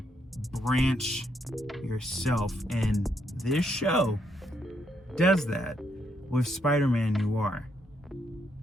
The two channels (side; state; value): both; normal; correlation 0.76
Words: branch yourself. And this show does that with Spider-Man Noir.